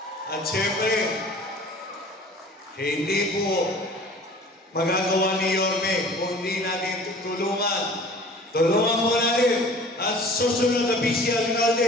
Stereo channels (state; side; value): normal; both; correlation 0.46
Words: At siyempre, hindi po magagawa ni Yorme kung hindi natin tutulungan. Tulungan po natin ang susunod na Vice